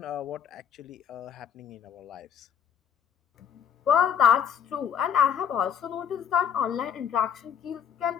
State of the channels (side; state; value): right; quieter; 8.2 dB